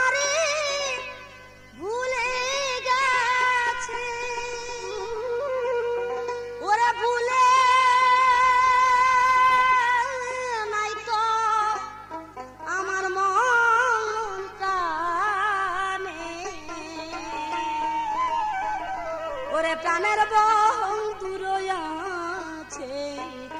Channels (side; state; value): both; identical; correlation 1.00